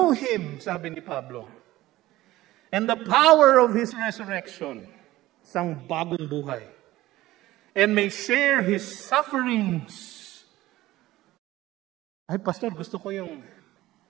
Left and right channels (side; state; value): left; quieter; 16.7 dB